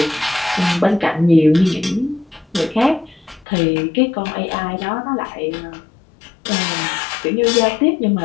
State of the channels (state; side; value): drops out; right; at 3.5 s